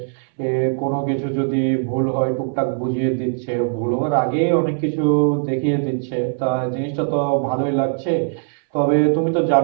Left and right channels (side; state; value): left; silent; 66 dB below the other